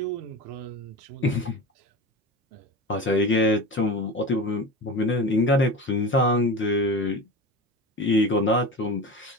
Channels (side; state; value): both; normal; correlation 0.29